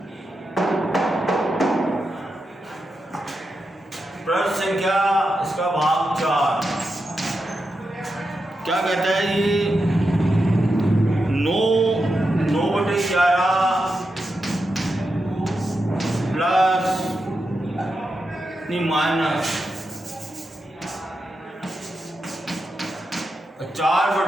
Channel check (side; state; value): both; normal; correlation 0.88